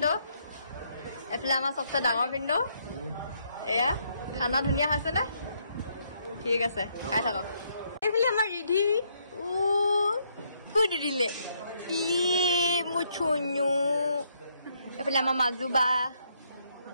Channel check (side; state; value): both; inverted; correlation -0.73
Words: এইফালে আমাৰ চবচে ডাঙৰ ভিনদেউ এয়া খানা ধুনীয়া হৈছে নে ঠিক আছে খাই থাকক এইফালে আমাৰ ৰিধি ক'ত দিলে মোৰ চুনু এইফালে আমাৰ মাজু বা